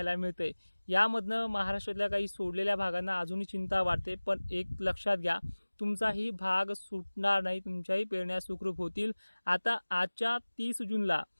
मिळते, यामधनं महाराष्ट्रातल्या काही सोडलेल्या भागांना अजूनही चिंता वाटते. पण एक लक्षात घ्या, तुमचाही भाग सुटणार नाही, तुमच्याही पेरण्या सुखरूप होतील. आता आजच्या 30 जूनला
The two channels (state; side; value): inverted; both; correlation -1.00